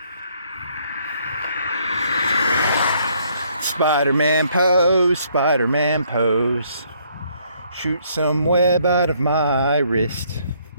Spider-Man pose, Spider-Man pose. Shoot some web out of my wrist.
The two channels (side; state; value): both; inverted; correlation -0.67